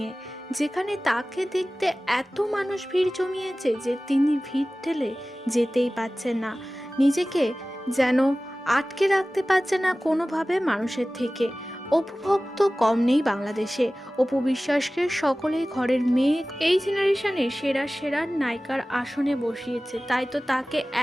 যেখানে তাকে দেখতে এত মানুষ ভিড় জমিয়েছে যে তিনি ভিড় ঠেলে যেতেই পারছেন না, নিজেকে যেন আটকে রাখতে পারছে না কোনোভাবে মানুষের থেকে। অপু ভক্ত কম নেই বাংলাদেশে। অপু বিশ্বাসকে সকলেই ঘরের মেয়ে, এই জেনারেশনে সেরা সেরা নায়িকার আসনে বসিয়েছে। তাই তো তাকে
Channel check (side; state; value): both; normal; correlation 0.97